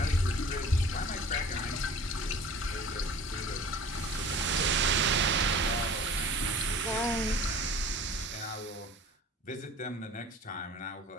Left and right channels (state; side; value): normal; both; correlation 0.44